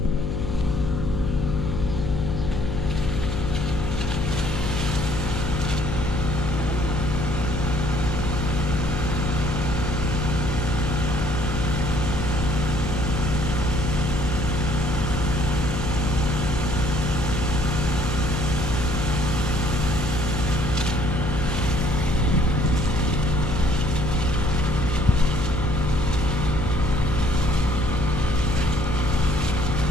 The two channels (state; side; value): noise; left; hum, 2 dB below the sound